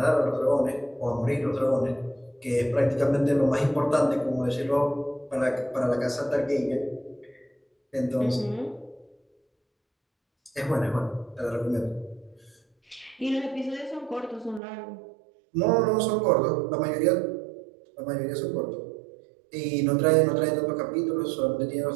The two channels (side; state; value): left; drops out; at 14.6 s